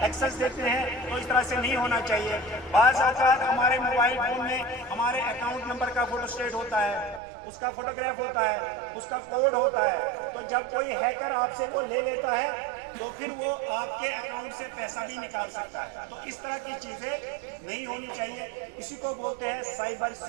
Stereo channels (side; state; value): left; drops out; at 7.2 s